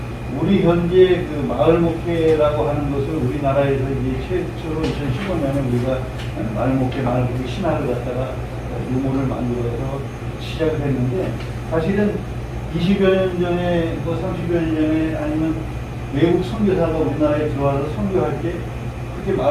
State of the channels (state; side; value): identical; both; correlation 1.00